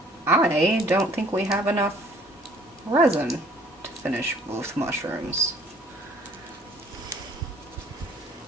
I don't think we have enough resin to finish both mushrooms.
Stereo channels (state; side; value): normal; both; correlation 0.57